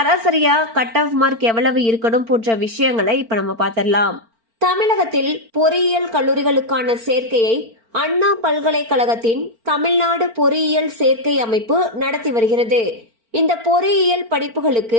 கட் ஆஃப் மார்க் எவ்வளவு இருக்கணும் போன்ற விஷயங்களை இப்ப நம்ம பார்த்திடலாம். தமிழகத்தில் பொறியியல் கல்லூரிகளுக்கான சேர்க்கையை அண்ணா பல்கலைக்கழகத்தின் தமிழ்நாடு பொறியியல் சேர்க்கை அமைப்பு நடத்தி வருகிறது. இந்த பொறியியல்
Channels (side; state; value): left; late; 4.4 ms